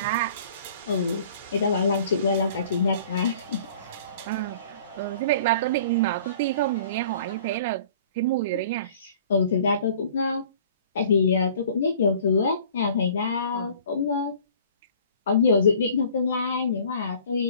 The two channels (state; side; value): inverted; both; correlation -0.49